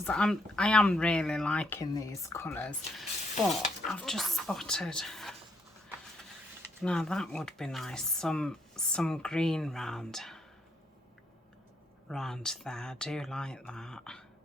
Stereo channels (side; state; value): both; normal; correlation 0.74